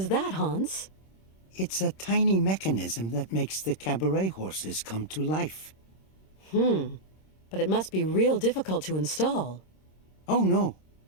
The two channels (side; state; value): right; late; 26 ms